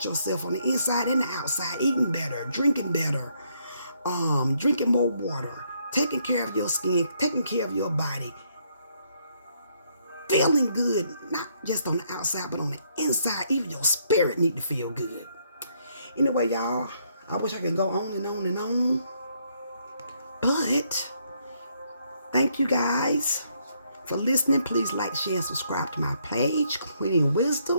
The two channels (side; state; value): both; inverted; correlation -0.72